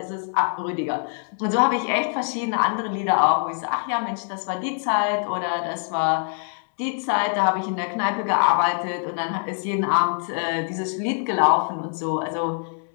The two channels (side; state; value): right; silent; 61 dB below the other